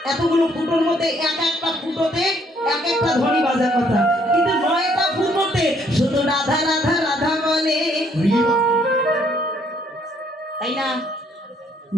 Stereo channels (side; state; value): both; normal; correlation 0.66